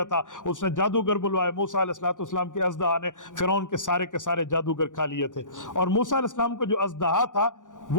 था, उसने जादूगर बुलवाए। मूसा अलैहिस्सलाम के अज़दहा ने फ़िरौन के सारे जादूगर खा लिए थे। और मूसा अलैहिस्सलाम को जो अज़दहा था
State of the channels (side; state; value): right; late; 0.87 ms